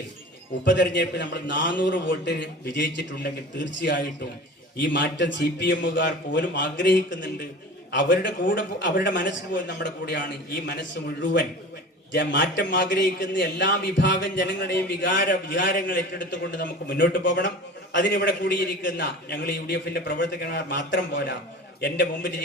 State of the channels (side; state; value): both; normal; correlation 0.38